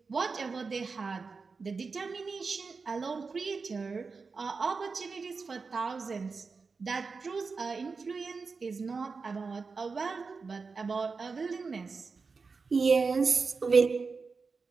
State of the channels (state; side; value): quieter; left; 4.6 dB